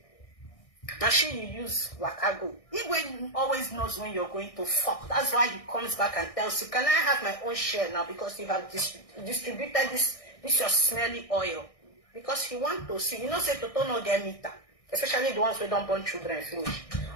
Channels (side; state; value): right; late; 1.6 ms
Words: Machine you use Wakago. Igwe always knows when you're going to fuck. That's why he comes back and tells you, can I have my own share now? Because you have distributed this your smelly oil. Because he wants to see. You know, say Toto no get meter. Especially the ones who don't born children finish.